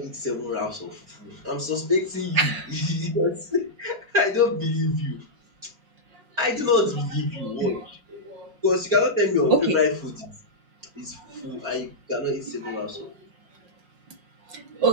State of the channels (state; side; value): late; left; 5.5 ms